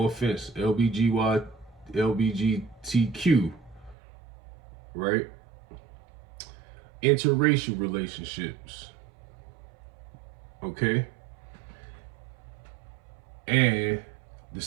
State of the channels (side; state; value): left; drops out; at 4.0 s